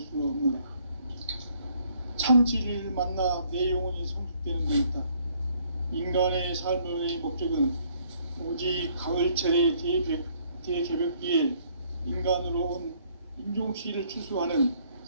없노라. 참 진리를 만나 내 영혼이 성숙되는 데 있다. 인간의 삶의 목적은 오직 가을철의 대개벽기에 인간으로 온 인종씨를 추수하는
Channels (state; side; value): inverted; both; correlation -0.65